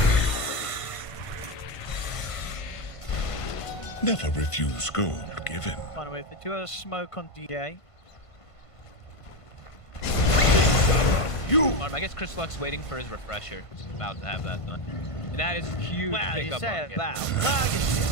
Never refuse gold given. By the way, if they do have a smoke on DA. I guess Chris Luck's waiting for his refresher. He's about to have that done. And that is huge Wow, you pickup say on him. about. Well,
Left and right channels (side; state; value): right; late; 1.5 ms